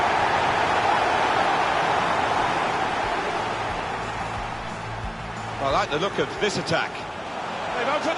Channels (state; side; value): identical; both; correlation 1.00